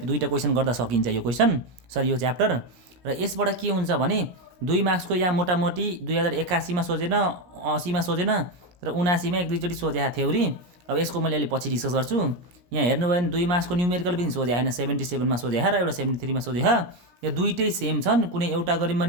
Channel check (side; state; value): left; late; 17 ms